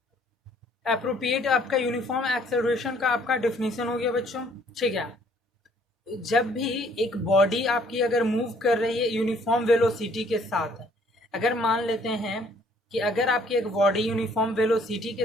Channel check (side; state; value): both; normal; correlation 0.61